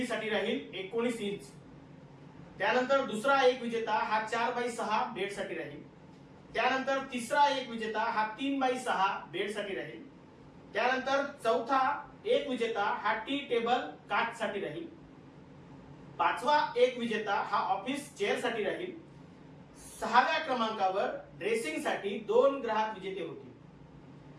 साठी राहील 19 इंच. त्यानंतर दुसरा एक विजेता हा 4x6 बेड साठी राहील. त्यानंतर तिसरा एक विजेता हा 3x6 बेड साठी राहील. त्यानंतर चौथा एक विजेता हा टी टेबल काच साठी राहील. पाचवा एक विजेता हा ऑफिस चेअर साठी राहील. 6व्या क्रमांकावर ड्रेसिंग साठी 2 ग्राहक विजेते होतील.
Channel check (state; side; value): identical; both; correlation 1.00